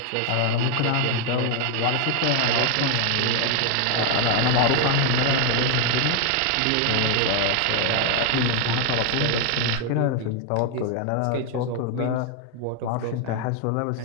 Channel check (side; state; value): both; different; correlation 0.00